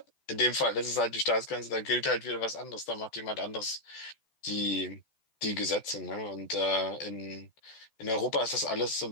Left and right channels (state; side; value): late; right; 14 ms